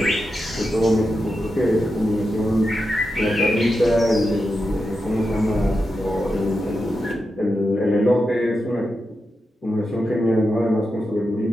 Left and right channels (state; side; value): normal; both; correlation 0.88